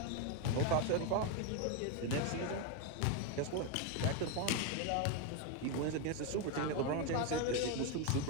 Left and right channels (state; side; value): different; both; correlation 0.02